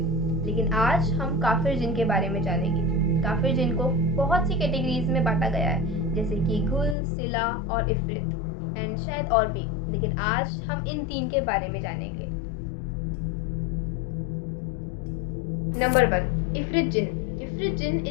लेकिन आज हम काफिर जिन के बारे में जानेंगे। काफिर जिन को बहुत सी कैटेगरीज में बांटा गया है, जैसे कि घुल, सिला और इफ्रित, एंड शायद और भी, लेकिन आज हम इन तीन के बारे में जानेंगे। नंबर 1, इफ्रित जिन। इफ्रित जिन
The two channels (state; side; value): drops out; right; at 7.0 s